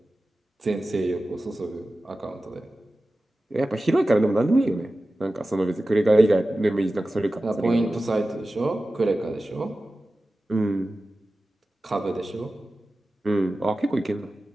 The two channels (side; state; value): both; normal; correlation 0.95